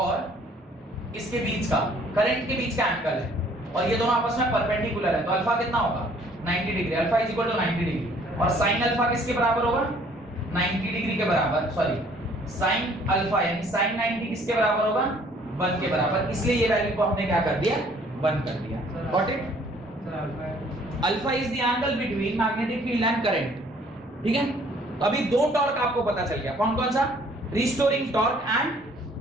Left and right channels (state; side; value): normal; both; correlation 0.59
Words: इसके बीच का, करंट के बीच का एंगल है, और ये दोनों आपस में परपेंडिकुलर है, तो अल्फा कितना होगा, 90 degree. Alpha is equal to 90 degree, और साइन अल्फा किसके बराबर होगा, 90 डिग्री के बराबर, सॉरी साइन अल्फा यानी साइन 90 किसके बराबर होगा, 1 के बराबर, इसलिए ये वैल्यू को हमने क्या कर दिया, 1 कर दिया। Got it. Alpha is the angle between magnetic field and current, ठीक है। तो अभी दो टॉर्क आपको पता चल गया, कौन कौन सा, restoring torque